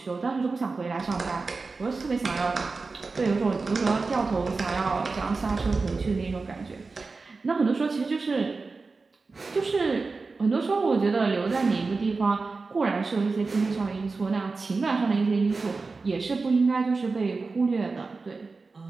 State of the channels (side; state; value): left; quieter; 4.1 dB